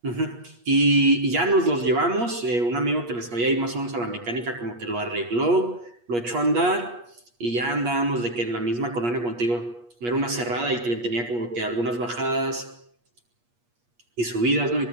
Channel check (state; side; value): late; left; 8.4 ms